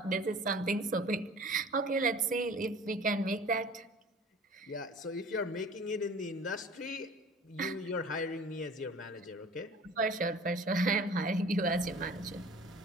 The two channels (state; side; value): normal; both; correlation 0.45